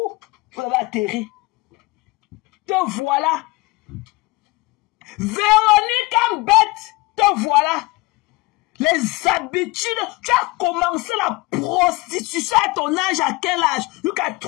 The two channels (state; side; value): quieter; right; 22.9 dB